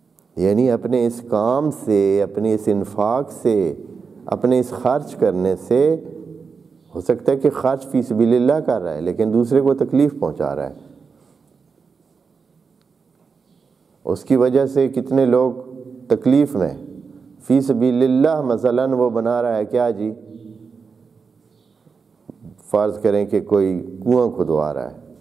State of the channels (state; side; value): quieter; left; 5.2 dB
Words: یعنی اپنے اس کام سے، اپنے اس انفاق سے، اپنے اس خرچ کرنے سے، ہو سکتا ہے کہ خرچ فی سبیل اللہ کر رہا ہے لیکن دوسرے کو تکلیف پہنچا رہا ہے، اس کی وجہ سے کتنے لوگ تکلیف میں۔ فی سبیل اللہ مثلاً وہ بنا رہا ہے کیا جی، فرض کریں کہ کوئی کنواں کھدوا رہا ہے،